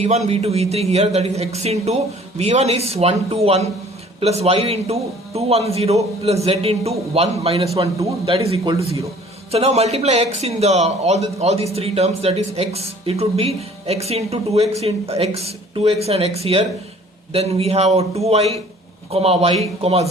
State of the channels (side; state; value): both; normal; correlation 0.52